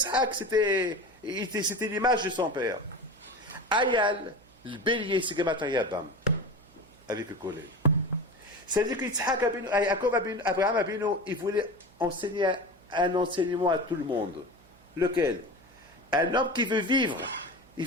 c'était l'image de son père. Ayal, le bélier, c'est Gematria Bam, avec le collègue. C'est-à-dire que Yitzhak Abinu, Abraham Abinu, il voulait enseigner un enseignement à tout le monde. Lequel? Un homme qui veut vivre, il ne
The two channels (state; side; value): noise; right; hum, 28 dB below the sound